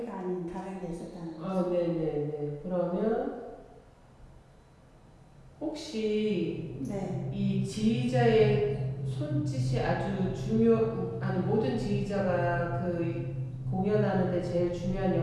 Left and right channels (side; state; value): both; identical; correlation 1.00